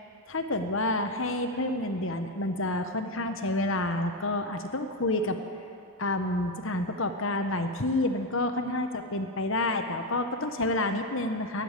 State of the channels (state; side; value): normal; both; correlation 0.10